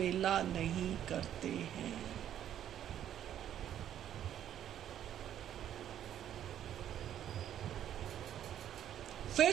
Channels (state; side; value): quieter; left; 10.7 dB